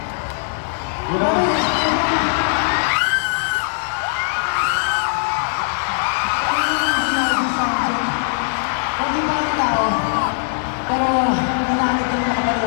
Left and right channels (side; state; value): right; silent; 66 dB below the other